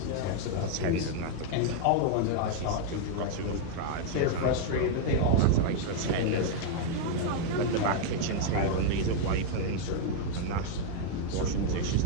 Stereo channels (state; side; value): different; both; correlation 0.00